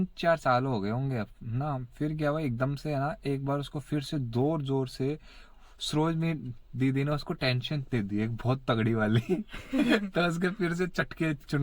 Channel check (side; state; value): both; identical; correlation 1.00